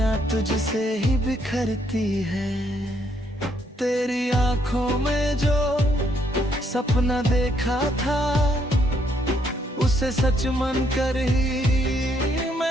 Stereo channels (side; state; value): both; normal; correlation 0.72